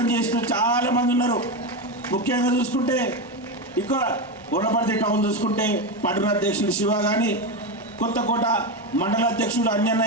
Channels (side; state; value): both; normal; correlation 0.14